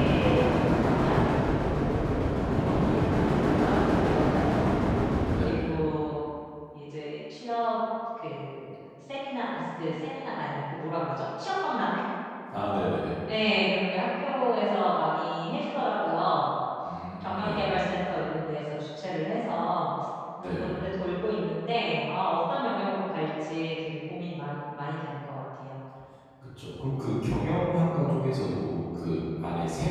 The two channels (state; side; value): identical; both; correlation 1.00